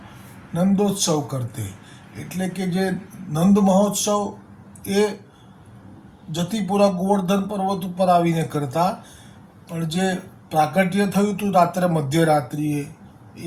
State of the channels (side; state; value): both; identical; correlation 1.00